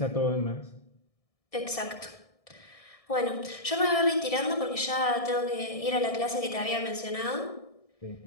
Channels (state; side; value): late; right; 1.6 ms